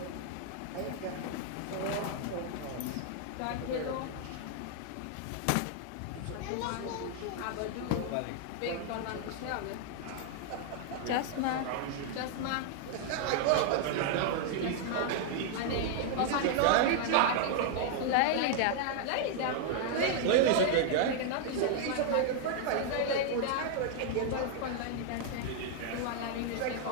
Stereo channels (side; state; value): both; different; correlation 0.00